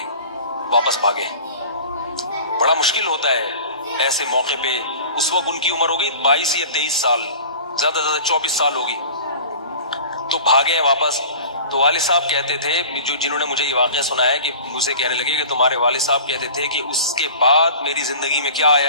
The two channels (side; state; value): both; inverted; correlation -0.41